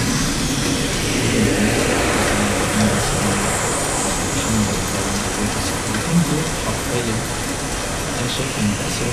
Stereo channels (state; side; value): identical; both; correlation 1.00